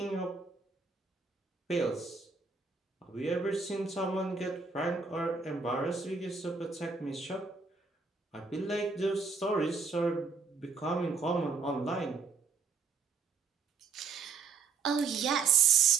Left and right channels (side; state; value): left; quieter; 5.0 dB